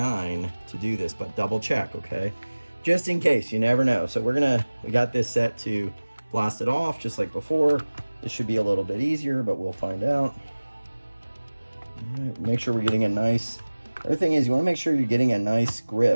to do this, but double check, okay? Just in case, you never know. So we got this set to blast it off just like before. This should be a little bit easier, but we'll find out. All right, make sure we're getting a nice, the other thing is you want to make sure you're getting a nice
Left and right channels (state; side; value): inverted; both; correlation -1.00